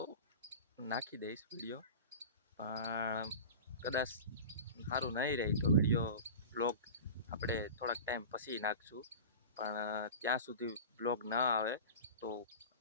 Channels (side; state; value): both; inverted; correlation -0.33